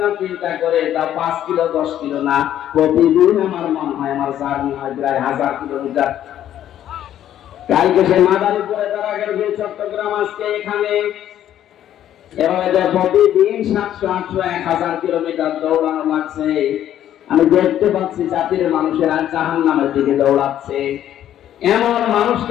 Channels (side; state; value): right; quieter; 11.3 dB